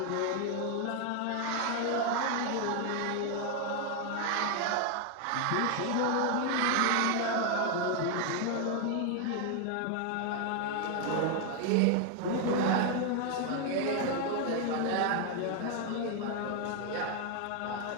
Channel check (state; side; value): different; both; correlation 0.01